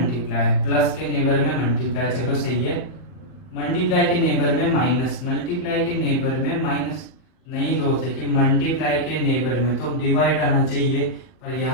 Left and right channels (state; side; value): late; right; 40 ms